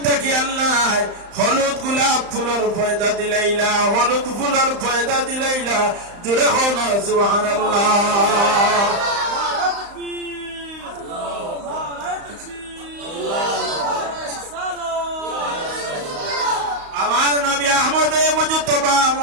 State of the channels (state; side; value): late; left; 35 ms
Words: থেকে আল্লাহ হলুদ গোলাপ ফুলের পয়দা দিলাইলা হলুদ ফুলের পয়দা দিলাইলা জোরে খাওয়া সুবহানাল্লাহ আমার নবী আহমদ মুজতবা